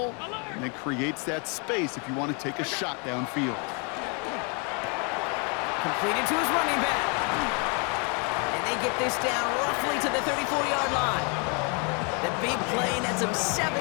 and then creates that space if you want to take a shot downfield. Completed to his running back. And they get this down roughly to the 34-yard line. The big play nets him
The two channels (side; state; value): right; quieter; 35.1 dB